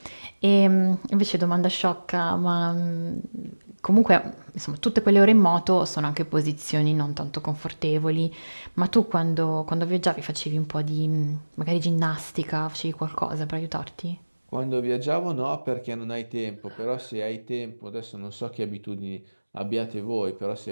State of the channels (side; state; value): both; inverted; correlation -1.00